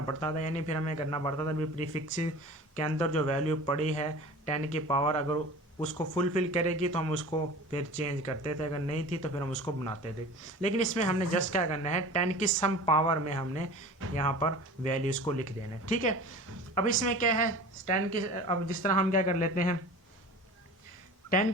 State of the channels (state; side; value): normal; both; correlation 0.38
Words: पड़ता था। यानी फिर हमें करना पड़ता था भी प्रीफिक्सेस के अंदर जो वैल्यू पड़ी है 10 की पावर, अगर उसको फुलफिल करेगी तो हम उसको फिर चेंज करते थे, अगर नहीं थी तो फिर हम उसको बनाते थे। लेकिन इसमें हमने जस्ट क्या करना है, 10 की सम पावर में हमने यहाँ पर वैल्यूज़ को लिख देना है, ठीक है। अब इसमें क्या है, 10 की, अब जिस तरह हम क्या कर लेते हैं, 10